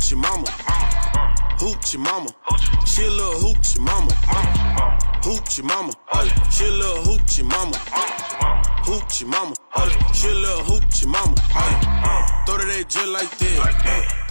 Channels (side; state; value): both; inverted; correlation -1.00